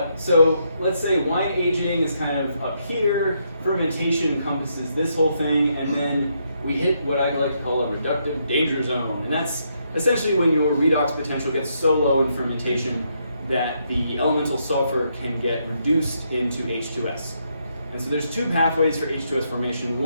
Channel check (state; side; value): inverted; both; correlation -0.77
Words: so let's say wine aging is kind of up here, fermentation encompasses this whole thing, and then we hit what I'd like to call a reductive danger zone. And that's essentially when your redox potential gets so low in fermentation that the elemental sulfur can get reduced into H2S. And so there's two pathways for H2S formation.